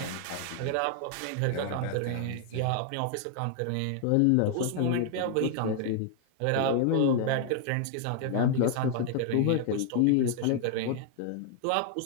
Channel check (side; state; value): both; different; correlation 0.00